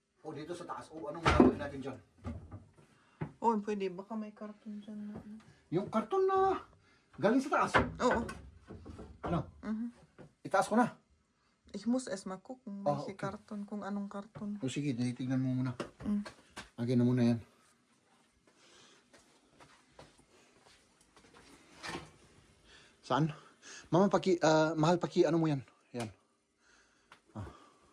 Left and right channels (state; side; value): identical; both; correlation 1.00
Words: O dito sa taas. O anong gagawin natin dyan? Oo, pwede. Baka may karton dyan na. Yung karton na galing sa taas. Oo. Ano? Itaas ko na. Ich muss erst mal gucken, Ah, welche okay. Karton, kung anong karton. O sige, tignan mo muna. Lagyan na muna yan. Saan? Mama, mahal ano mo yan? Yan.